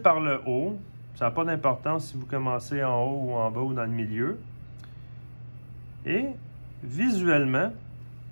le haut. Ça n'a pas d'importance si vous commencez en haut ou en bas ou dans le milieu. Et visuellement,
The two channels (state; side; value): inverted; both; correlation -1.00